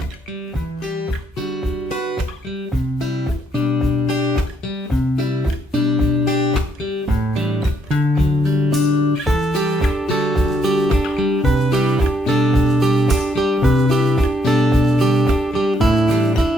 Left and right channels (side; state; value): both; normal; correlation 0.73